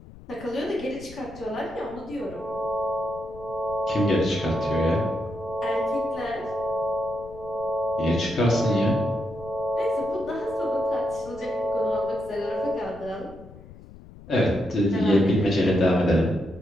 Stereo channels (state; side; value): noise; left; rumble, 19 dB below the sound